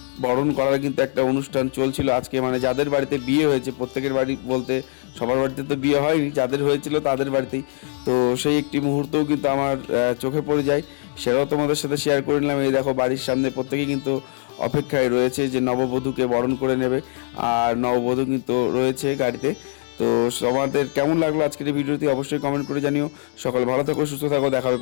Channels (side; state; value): right; silent; 60 dB below the other